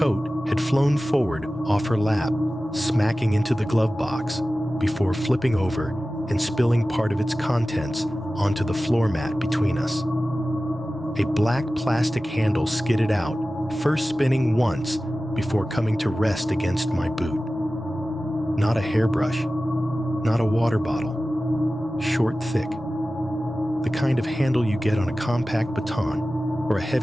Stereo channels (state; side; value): normal; both; correlation 0.96